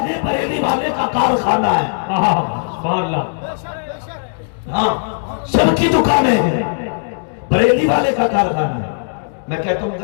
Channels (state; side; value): silent; right; digital silence